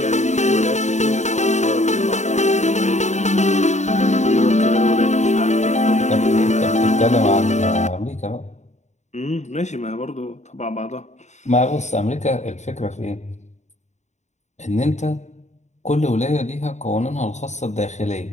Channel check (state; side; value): late; right; 0.34 ms